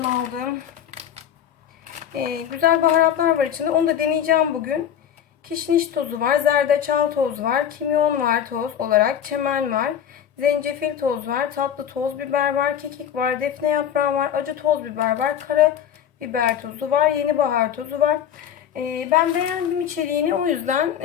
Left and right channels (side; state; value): right; quieter; 9.3 dB